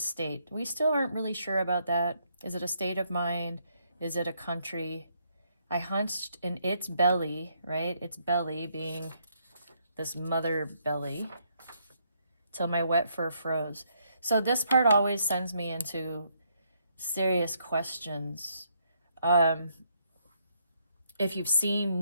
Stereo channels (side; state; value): both; inverted; correlation -0.73